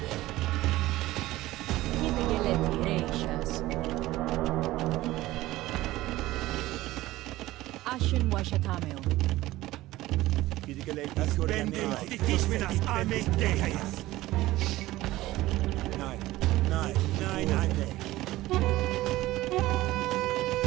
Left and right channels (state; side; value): quieter; left; 17.1 dB